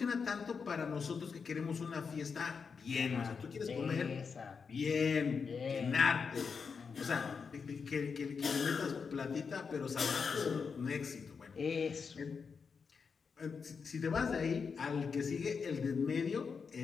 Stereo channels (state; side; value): quieter; right; 5.7 dB